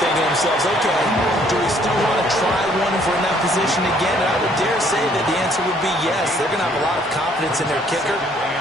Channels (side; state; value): both; normal; correlation 0.63